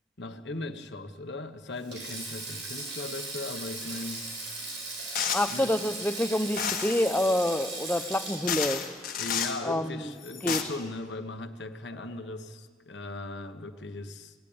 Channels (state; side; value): normal; both; correlation 0.65